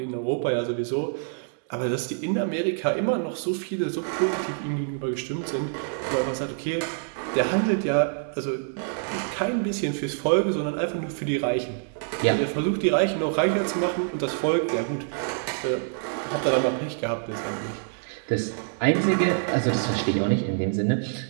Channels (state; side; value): silent; left; digital silence